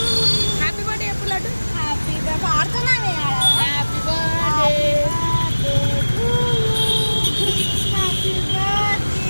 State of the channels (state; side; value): inverted; both; correlation -1.00